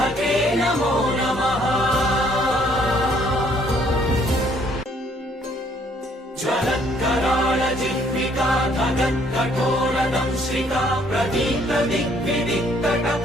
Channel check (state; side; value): normal; both; correlation 0.64